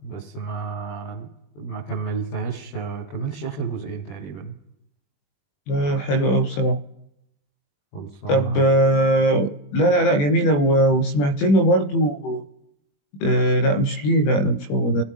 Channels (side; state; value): right; late; 21 ms